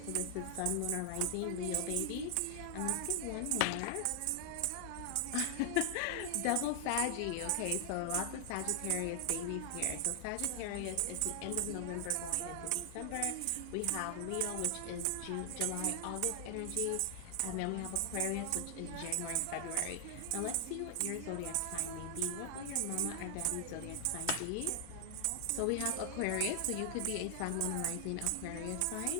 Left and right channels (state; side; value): different; both; correlation 0.00